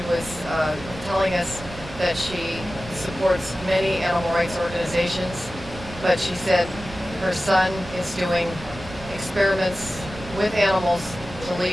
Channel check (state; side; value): noise; right; rumble, 15 dB below the sound